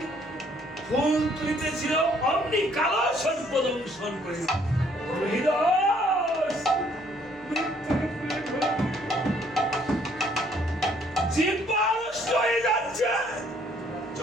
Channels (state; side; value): noise; left; hum, 27 dB below the sound